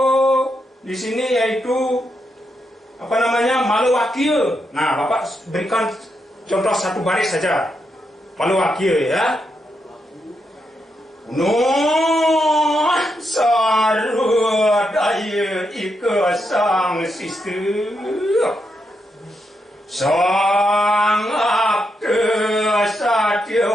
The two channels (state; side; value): normal; both; correlation 0.82